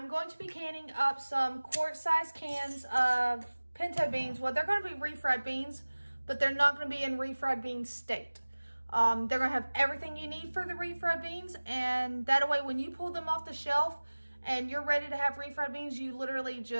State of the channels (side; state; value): both; inverted; correlation -1.00